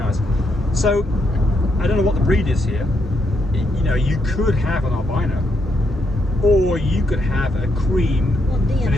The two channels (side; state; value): both; normal; correlation 0.78